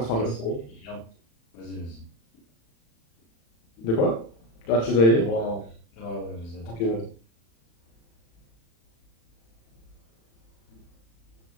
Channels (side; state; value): right; late; 35 ms